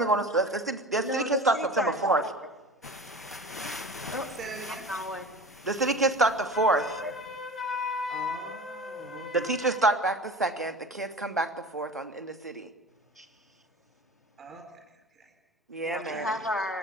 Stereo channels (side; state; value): both; normal; correlation 0.36